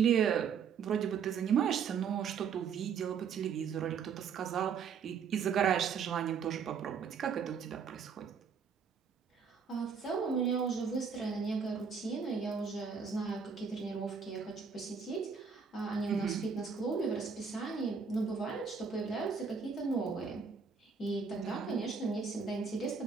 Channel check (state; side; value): quieter; left; 6.2 dB